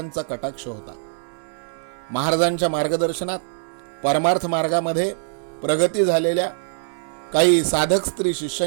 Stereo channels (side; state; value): left; silent; digital silence